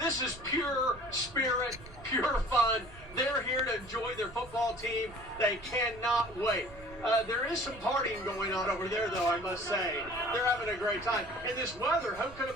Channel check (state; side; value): noise; right; rumble, 19 dB below the sound